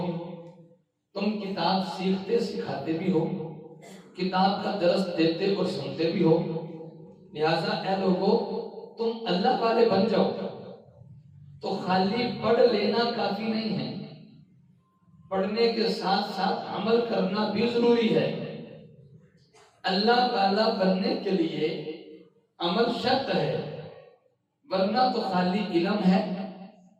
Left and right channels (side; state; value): both; identical; correlation 1.00